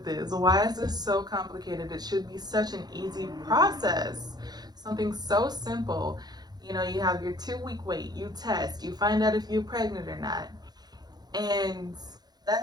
this? Why is this so complicated? It should be such an easy process. Something so simple. You have your 2 week wait, you test, you find out if you're pregnant or not. And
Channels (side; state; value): left; late; 0.20 ms